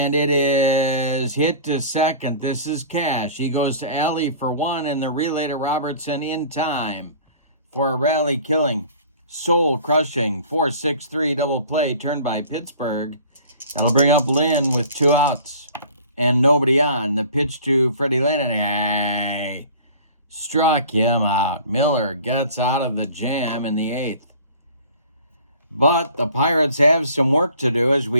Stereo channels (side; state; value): both; inverted; correlation -0.46